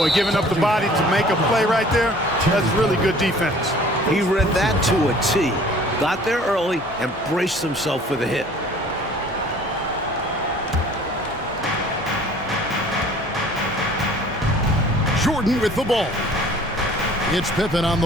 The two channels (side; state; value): both; normal; correlation 0.51